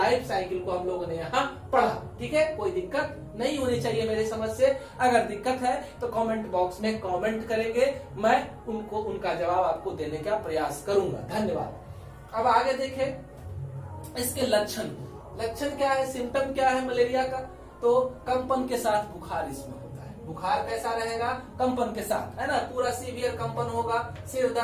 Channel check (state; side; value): identical; both; correlation 1.00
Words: साइकिल को हम लोगों ने यहाँ पढ़ा। ठीक है, कोई दिक्कत नहीं होनी चाहिए मेरे समझ से। अगर दिक्कत है तो कमेंट बॉक्स में कमेंट करेंगे, मैं उनका जवाब आपको देने का प्रयास करूंगा। धन्यवाद। अब आगे देखें इसके लक्षण। लक्षण क्या है, सिम्टम क्या है मलेरिया का? तो कंपन के साथ बुखार इसमें होता है। बुखार कैसा रहेगा? कंपन के साथ, है ना। पूरा सीवियर कंपन होगा, सिर